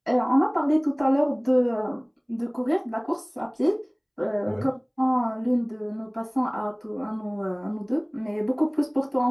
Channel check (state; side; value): identical; both; correlation 1.00